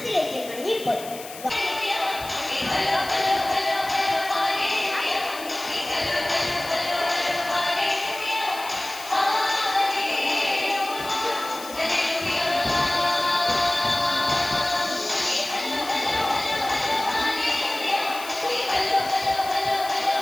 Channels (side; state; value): left; noise; hiss, 14 dB below the sound